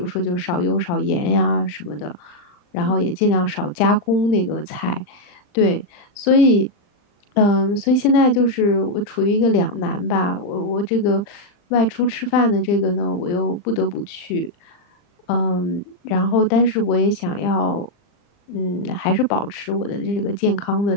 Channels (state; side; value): late; right; 39 ms